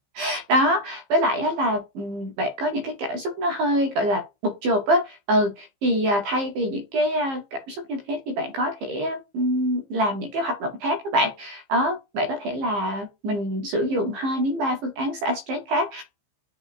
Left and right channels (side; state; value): left; late; 15 ms